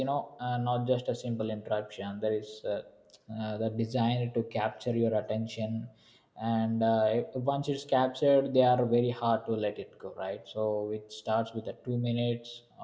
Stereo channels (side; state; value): both; identical; correlation 1.00